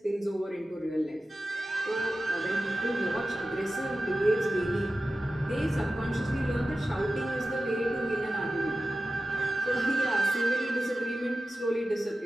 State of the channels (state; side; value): normal; both; correlation 0.94